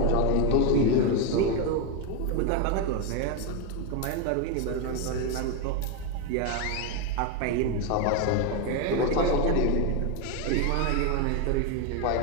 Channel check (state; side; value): different; both; correlation 0.02